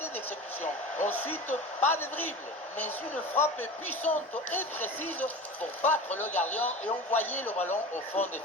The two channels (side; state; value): both; normal; correlation 0.32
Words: d'exécution. Ensuite, pas de dribble, mais une frappe puissante et précise pour battre le gardien et envoyer le ballon au fond des